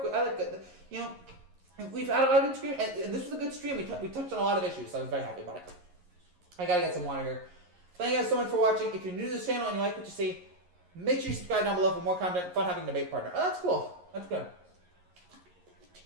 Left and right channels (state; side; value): late; left; 11 ms